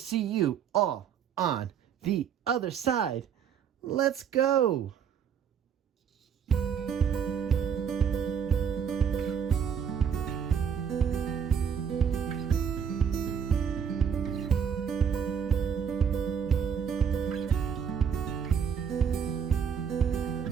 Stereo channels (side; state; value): left; quieter; 7.5 dB